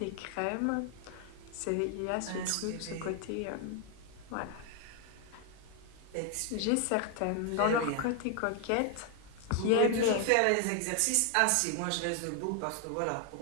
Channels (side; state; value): both; different; correlation 0.00